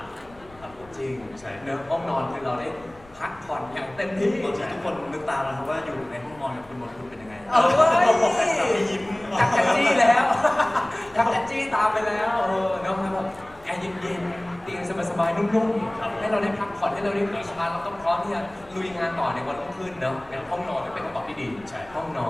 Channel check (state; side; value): noise; left; rumble, 25 dB below the sound